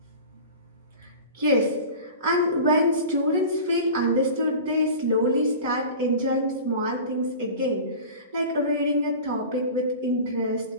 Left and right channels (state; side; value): inverted; both; correlation -0.36